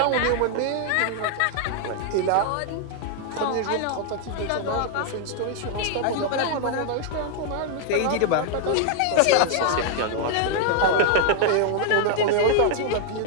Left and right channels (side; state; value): both; different; correlation 0.00